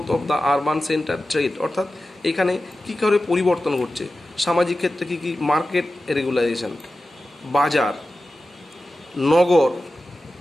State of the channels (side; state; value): both; normal; correlation 0.94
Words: of the urban center, trade, অর্থাৎ এখানে কী করে পরিবর্তন ঘটছে, সামাজিক ক্ষেত্রে কী কী, মার্কেট রেগুলাইজেশন, বাজার, নগর,